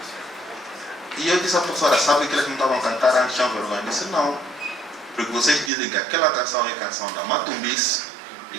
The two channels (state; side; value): drops out; left; at 5.7 s